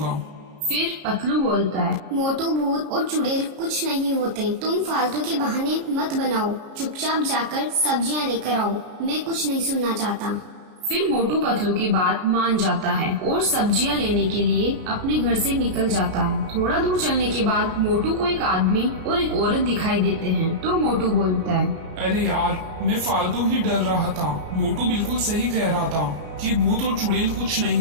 फिर पतलू बोलता है, मोटू, भूत और चुड़ैल कुछ नहीं होते, तुम फालतू के बहाने मत बनाओ, चुपचाप जाकर सब्जियां लेकर आओ, मैं कुछ नहीं सुनना चाहता। फिर मोटू पतलू की बात मान जाता है और सब्जियां लेने के लिए अपने घर से निकल जाता है। थोड़ा दूर चलने के बाद मोटू को एक आदमी और एक औरत दिखाई देते हैं तो मोटू बोलता है, अरे यार, मैं फालतू ही डर रहा था। मोटू बिल्कुल सही कह रहा था कि भूत और चुड़ैल कुछ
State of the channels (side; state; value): left; late; 33 ms